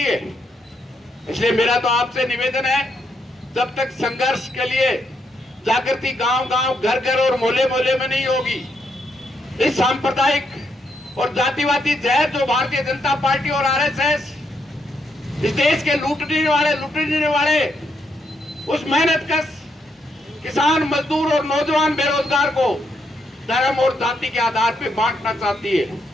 है। इसलिए मेरा तो आपसे निवेदन है, जब तक संघर्ष के लिए जागृति गांव-गांव, घर-घर और मोहल्ले-मोहल्ले में नहीं होगी, इस सांप्रदायिक और जातिवादी जहर जो भारतीय जनता पार्टी और आरएसएस इस देश के लूटने वाले उस मेहनतकश किसान, मजदूर और नौजवान बेरोजगार को धर्म और जाति के आधार पर बांटना चाहती है,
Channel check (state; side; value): normal; both; correlation 0.78